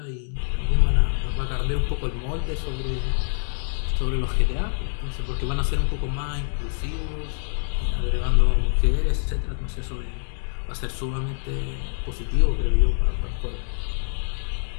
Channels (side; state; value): right; silent; digital silence